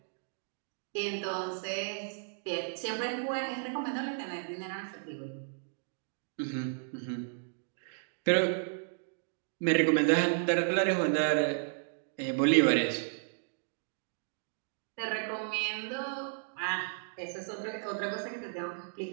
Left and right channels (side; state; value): left; silent; digital silence